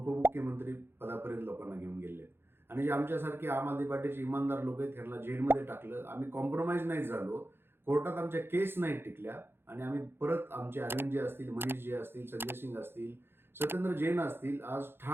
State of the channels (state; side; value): late; left; 0.11 ms